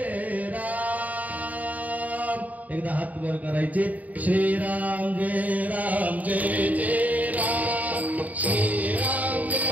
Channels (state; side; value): late; left; 0.074 ms